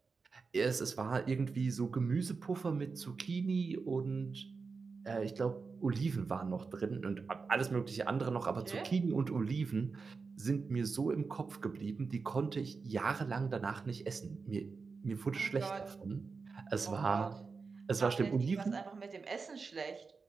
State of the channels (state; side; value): quieter; left; 4.7 dB